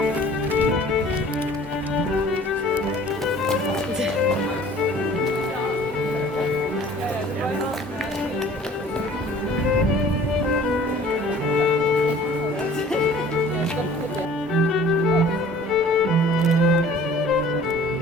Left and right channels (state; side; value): normal; both; correlation 0.50